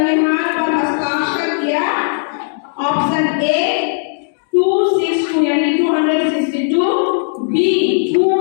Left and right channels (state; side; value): silent; right; digital silence